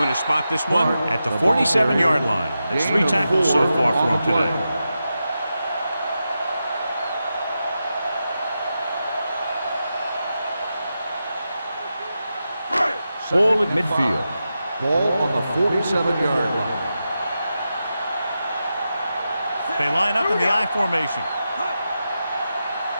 to spot this one at the 47-yard line. That's 3 tackles so far for him today. Ball at midfield. Ball on the 47-yard line. They line up in the I formation.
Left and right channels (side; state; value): both; inverted; correlation -0.89